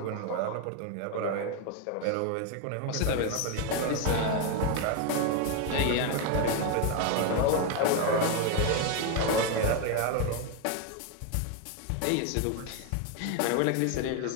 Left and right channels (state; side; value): different; both; correlation 0.01